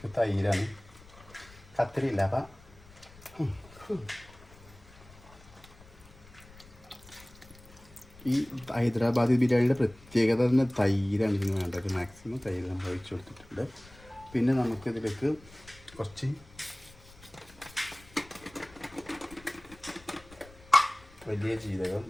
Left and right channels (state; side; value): noise; left; rumble, 23 dB below the sound